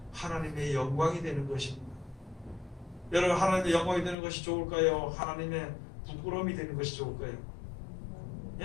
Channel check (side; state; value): right; drops out; at 4.2 s